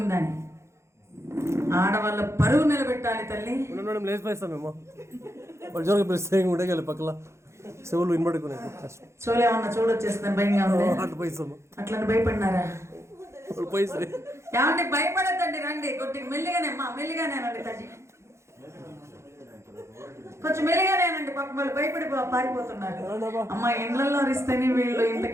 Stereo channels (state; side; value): late; left; 0.13 ms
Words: ఆడవాళ్ళ పరువు నిలబెట్టాలి తల్లి. పక్కల చెవులు వినబడుకున్నాయి. చూలేమన్నా చూడొచ్చేస్తాను, భయంగా ఉంది. అట్లా భయపడినారా? ఏమంటే భయపడద్దండి, రండి కొద్దిగా మెల్లిగానే మెల్లిగానేనండి తల్లి, కొంచెం మెల్లిగానేనండి. పాపం వాళ్ళు భయపడి పారిపోతున్నారు. అమ్మ ఇండ్లలో అరిస్తేనే వీళ్ళు ఇంత